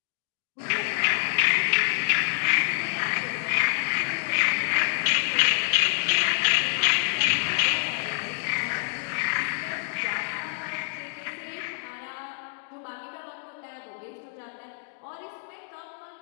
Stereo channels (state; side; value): silent; right; digital silence